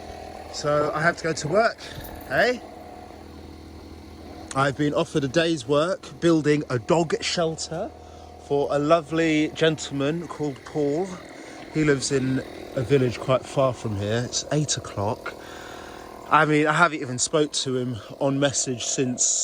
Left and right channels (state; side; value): identical; both; correlation 1.00